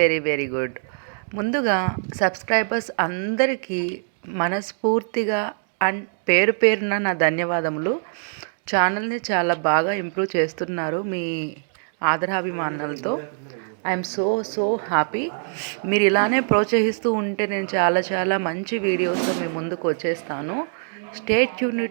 very good. ముందుగా సబ్స్క్రైబర్స్ అందరికీ మనస్ఫూర్తిగా అండ్ పేరు పేరున నా ధన్యవాదములు. ఛానల్ని చాలా బాగా ఇంప్రూవ్ చేస్తున్నారు మీ ఆదరాభిమానాలతో. I'm so happy. మీరు ఇలానే ప్రోత్సహిస్తూ ఉంటే నేను చాలా మంచి వీడియోస్తో మీ ముందుకు వచ్చేస్తాను. Stay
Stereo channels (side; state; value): left; silent; digital silence